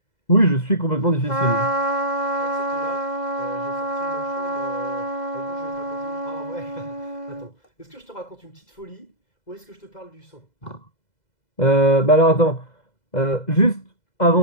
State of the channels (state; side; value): late; right; 2.0 ms